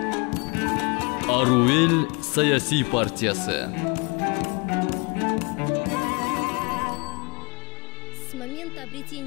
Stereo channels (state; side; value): quieter; right; 29.5 dB